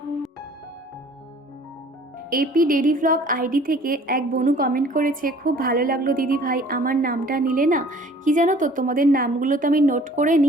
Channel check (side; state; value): both; normal; correlation 0.52